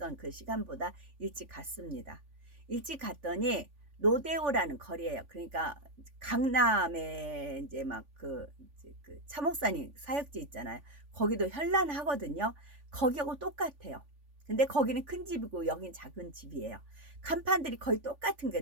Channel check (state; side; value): late; left; 3.5 ms